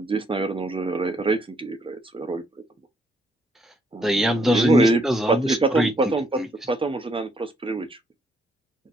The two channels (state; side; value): normal; both; correlation 0.71